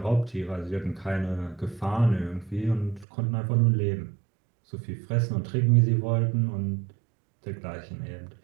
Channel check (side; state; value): left; drops out; at 3.1 s